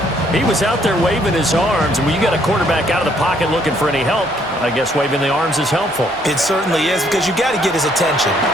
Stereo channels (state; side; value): normal; both; correlation 0.67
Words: He was out there waving his arms, and when you got a quarterback out of the pocket looking for any help, I guess waving the arms is helpful. It certainly is, because you got to get his attention,